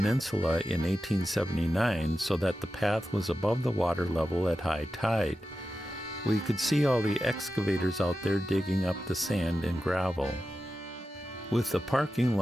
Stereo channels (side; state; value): both; normal; correlation 0.92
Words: in 1879 so that the path was above the water level at high tide. We could see all the excavators out there digging up the sand and gravel. With the parking